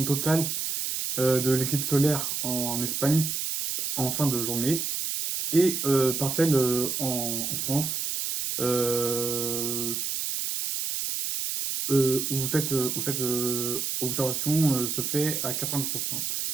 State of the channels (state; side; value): noise; right; hiss, 2 dB below the sound